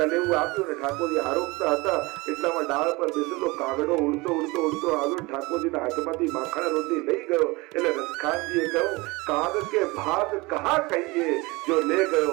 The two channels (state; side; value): quieter; left; 23.8 dB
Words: આપ્યું ને ઠાકોરજી આરોગતા હતા એટલામાં ડાળ પર બેસેલો કાગડો ઉડતો ઉડતો ઉડતો આવ્યો, ઠાકોરજીના હાથમાંથી માખણ રોટલી લઈ ગયો. એટલે રસખાનજીએ કહ્યું, કાગ કે ભાગ કહા કહીએ જો લે